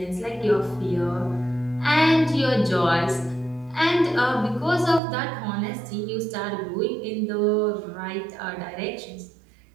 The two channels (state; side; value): drops out; left; at 5.0 s